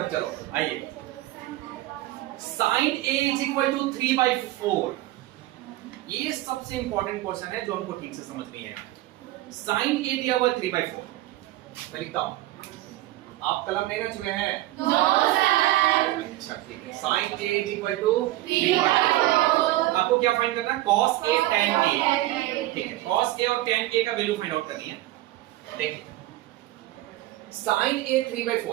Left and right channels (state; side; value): quieter; left; 16.6 dB